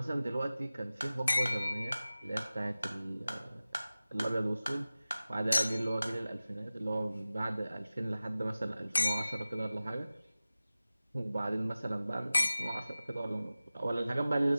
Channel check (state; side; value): inverted; both; correlation -0.96